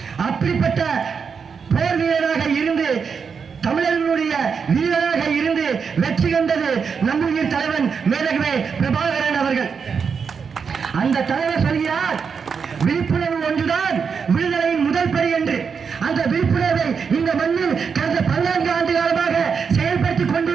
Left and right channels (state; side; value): quieter; left; 6.0 dB